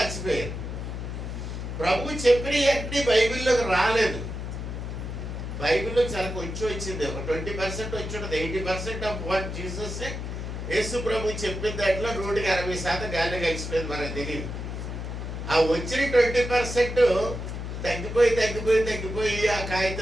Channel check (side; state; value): left; noise; hum, 6 dB below the sound